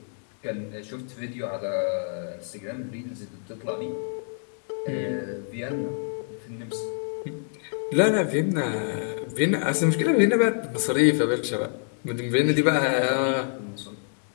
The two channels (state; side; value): silent; right; 60 dB below the other